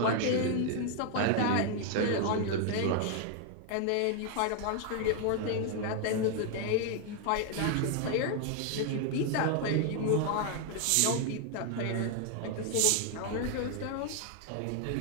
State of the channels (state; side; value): different; both; correlation 0.00